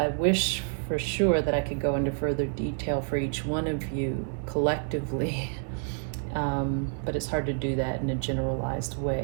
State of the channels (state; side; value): silent; left; 59 dB below the other